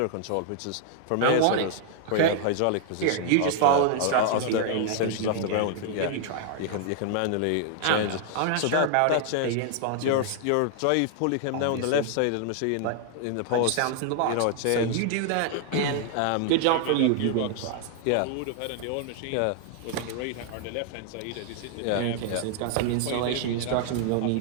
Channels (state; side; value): different; both; correlation 0.00